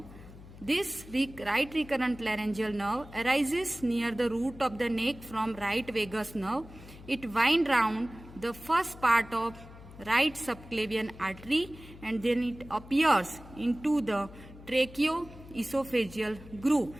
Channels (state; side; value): noise; left; hum, 18 dB below the sound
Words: This right recurrent laryngeal nerve arises near the root of the neck from right vagus nerve. It winds round the first part of right subclavian artery, and then it appears into the tracheoesophageal groove,